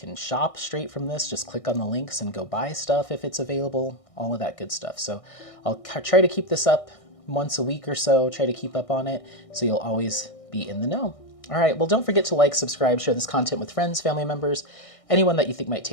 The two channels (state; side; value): late; right; 1.6 ms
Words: shop straight from this. Just click on the links and go buy stuff if it's available, all of that good stuff. So I'll try to keep this up once a week or so, try to keep up on it so you'll always be in the know. All right, well, don't forget to like, subscribe, share this content with friends, family members, anyone that you think might